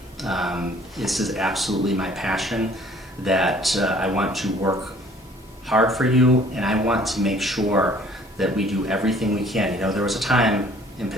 This is absolutely my passion, that I want to work hard for you, and I want to make sure that we do everything we can. There was a time in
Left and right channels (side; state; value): both; normal; correlation 0.55